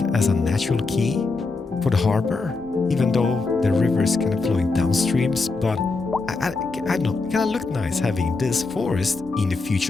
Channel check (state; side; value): quieter; right; 3.9 dB